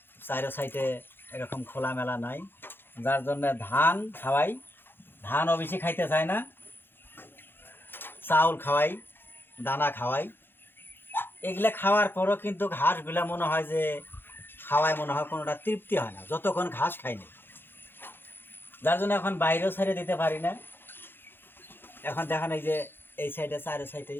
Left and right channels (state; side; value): late; right; 0.10 ms